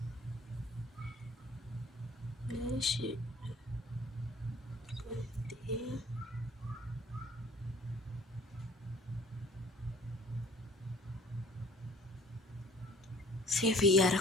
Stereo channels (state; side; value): normal; both; correlation 0.53